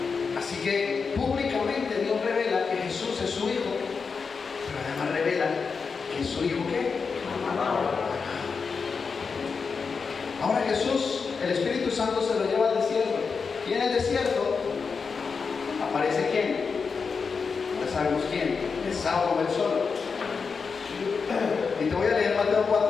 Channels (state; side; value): quieter; right; 5.3 dB